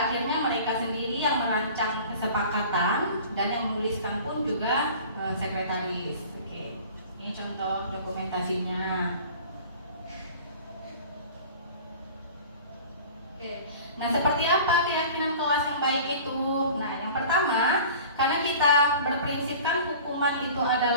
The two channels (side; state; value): both; inverted; correlation -0.43